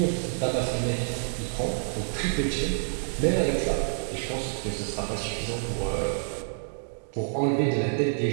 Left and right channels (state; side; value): silent; left; digital silence